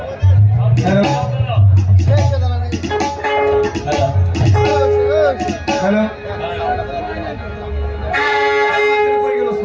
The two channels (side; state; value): both; identical; correlation 1.00